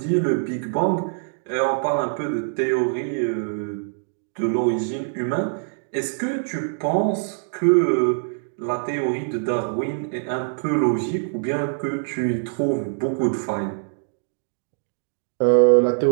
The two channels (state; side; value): silent; left; digital silence